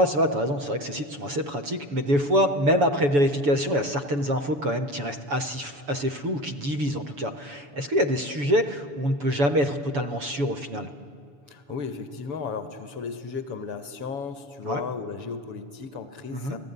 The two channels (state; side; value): late; left; 7.0 ms